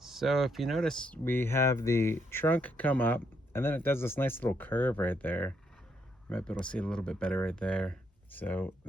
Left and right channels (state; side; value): normal; both; correlation 0.75